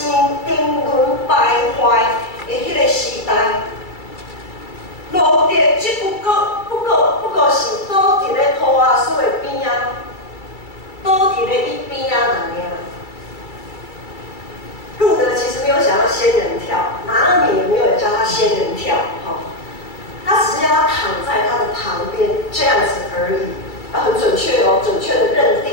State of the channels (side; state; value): right; late; 2.3 ms